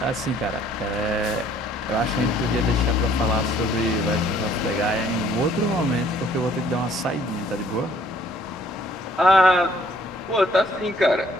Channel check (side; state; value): both; normal; correlation 0.61